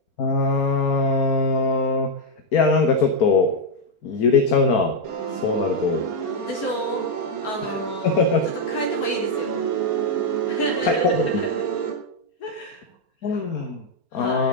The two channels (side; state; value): right; late; 4.4 ms